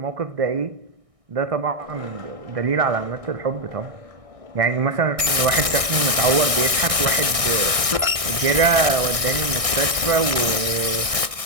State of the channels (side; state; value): left; late; 1.6 ms